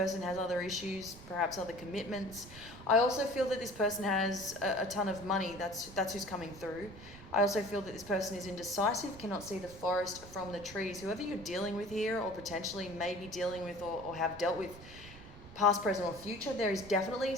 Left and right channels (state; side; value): noise; right; rumble, 17 dB below the sound